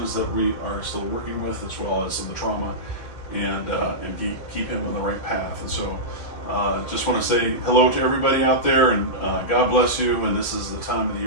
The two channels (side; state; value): right; late; 2.1 ms